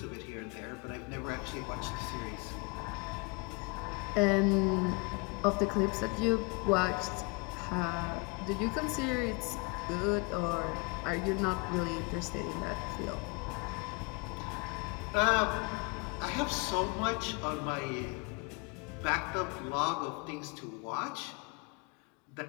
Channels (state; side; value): quieter; right; 30.4 dB